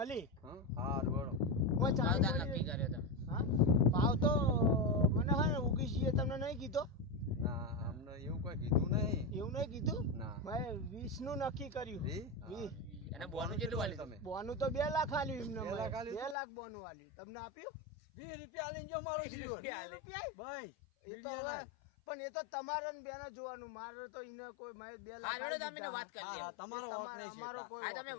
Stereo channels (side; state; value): right; drops out; at 16.4 s